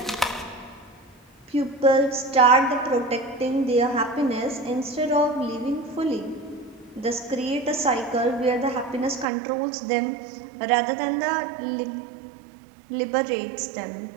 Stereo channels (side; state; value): left; drops out; at 9.2 s